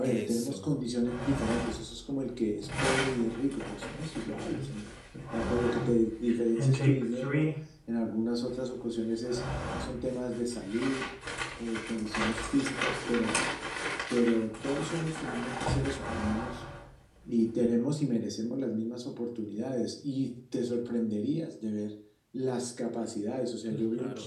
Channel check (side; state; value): both; identical; correlation 1.00